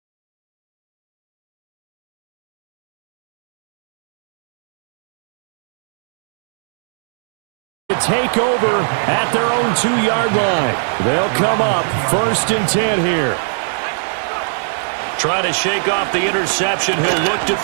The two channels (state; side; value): silent; left; digital silence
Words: Take over at their own 2-yard line. They'll come up 1st and 10 here. Trying to shake off the interception. He'll look to